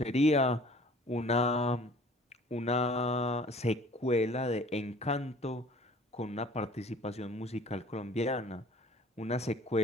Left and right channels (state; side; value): normal; both; correlation 0.50